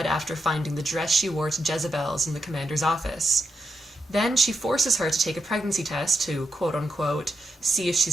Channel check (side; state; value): both; normal; correlation 0.85